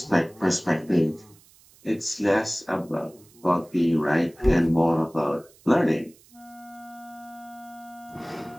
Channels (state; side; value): noise; right; hiss, 27 dB below the sound